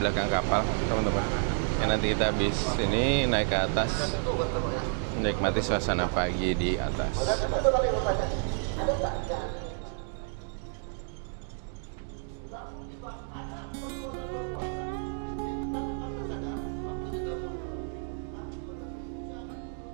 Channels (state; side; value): silent; left; 58 dB below the other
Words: belakang kapal teman-teman. Yang nanti kita habis ini naik ke atas, menikmati suasana pagi di atas.